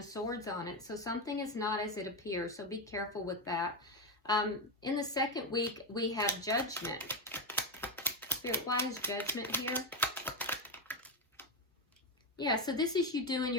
Swords on it. So something is not as it appears, so be careful with that. In the second week, we have Judgment. Spirit, why is Judgment here? Yeah, so this is you doing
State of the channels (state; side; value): normal; both; correlation 0.10